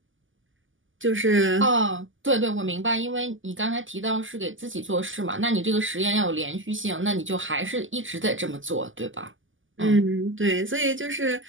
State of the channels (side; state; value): left; late; 0.57 ms